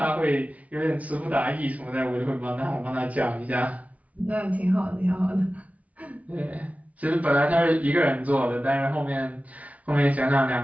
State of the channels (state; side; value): late; left; 0.068 ms